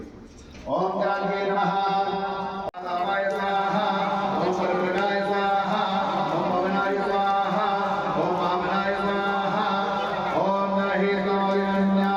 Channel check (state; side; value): identical; both; correlation 1.00